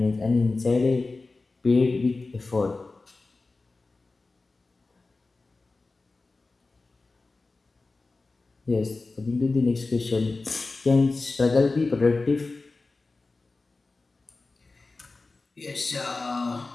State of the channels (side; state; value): right; quieter; 3.6 dB